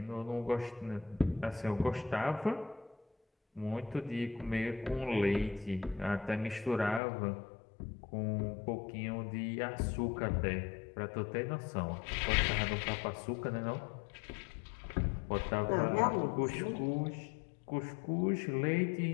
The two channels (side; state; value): right; drops out; at 7.0 s